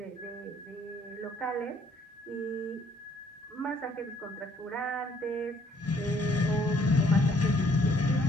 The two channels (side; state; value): both; normal; correlation 0.64